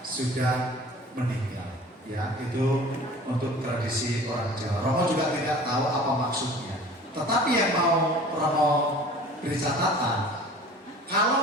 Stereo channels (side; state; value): both; normal; correlation 0.44